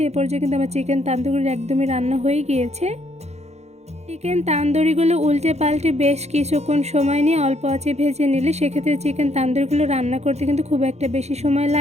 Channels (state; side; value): late; left; 0.32 ms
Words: এ পর্যায়ে কিন্তু আমার চিকেন তান্দুরি একদমই রান্না হয়ে গিয়েছে। চিকেন তান্দুরিগুলো উল্টে পাল্টে বেশ কিছুক্ষণ সময় নিয়ে অল্প আঁচে ভেজে নিলে সেক্ষেত্রে চিকেন তান্দুরিগুলো রান্না করতে কিন্তু খুব একটা বেশি সময়